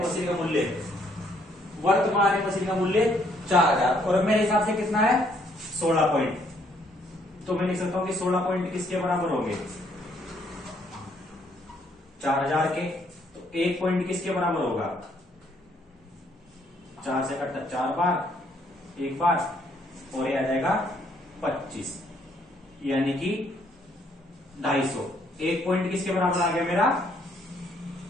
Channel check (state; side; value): normal; both; correlation 0.68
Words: मशीन का मूल्य, वर्तमान मशीन का मूल्य 4000, और मेरे हिसाब से कितना है 16 पॉइंट। तो मैं लिख सकता हूं कि 16 पॉइंट किसके बराबर होंगे, 4000 के। तो 1 पॉइंट किसके बराबर होगा, 4 से कटता 4 बार, 1 बार, और ये आ जाएगा 25, यानी कि 250। 1 पॉइंट किसके बराबर आ गया मेरा,